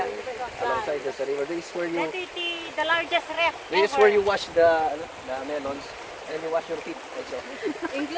Alongside the river. This is where you The largest ref this is where you wash the melons and you wash your feet also.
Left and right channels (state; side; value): identical; both; correlation 1.00